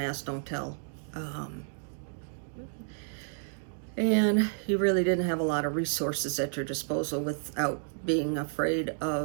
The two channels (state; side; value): silent; left; digital silence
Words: Don't Tell. And you really didn't have a lot of resources at your disposal without being afraid